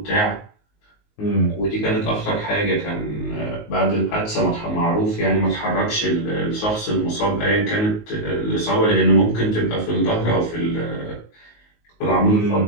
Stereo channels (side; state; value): right; late; 19 ms